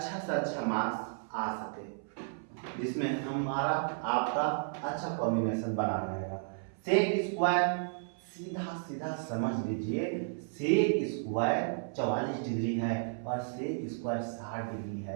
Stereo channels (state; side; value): silent; left; 56 dB below the other